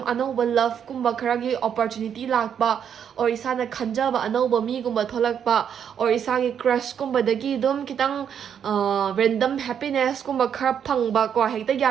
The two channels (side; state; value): left; quieter; 8.3 dB